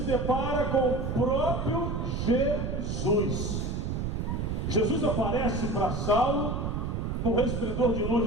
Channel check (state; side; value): noise; right; rumble, 2 dB below the sound